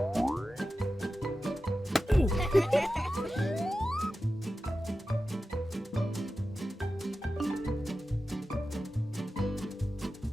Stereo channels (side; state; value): both; normal; correlation 0.93